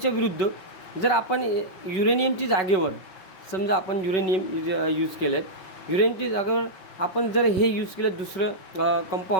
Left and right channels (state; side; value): late; right; 5.3 ms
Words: विरुद्ध जर आपण युरेनियमची जागेवर समजा आपण युरेनियम यूज केलं आहे, युरेनियमची जागेवर आपण जर हे यूज केलं दुसरं